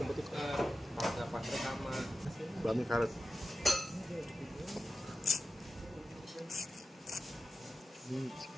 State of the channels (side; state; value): both; normal; correlation 0.92